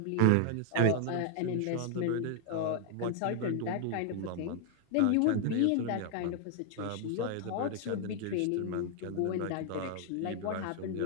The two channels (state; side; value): different; both; correlation 0.00